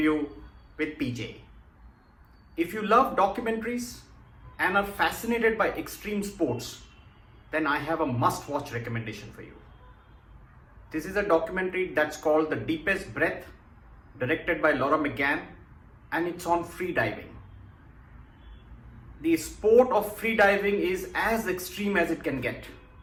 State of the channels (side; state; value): both; identical; correlation 1.00